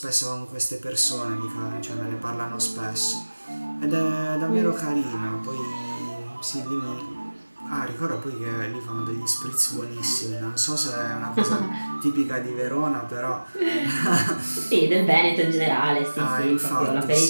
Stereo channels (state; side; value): inverted; both; correlation -1.00